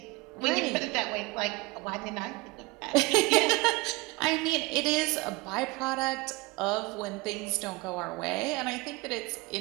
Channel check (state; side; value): quieter; left; 23.0 dB